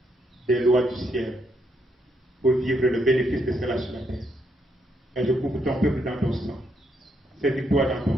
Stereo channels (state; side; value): normal; both; correlation 0.76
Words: des lois du ciel pour vivre le bénéfice de cela sur la terre. Et je couvre ton peuple dans ton sang. Saisis-toi dans ton